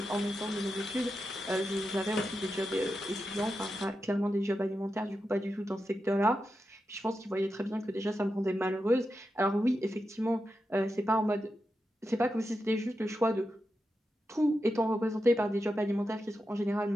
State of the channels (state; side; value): normal; both; correlation 0.89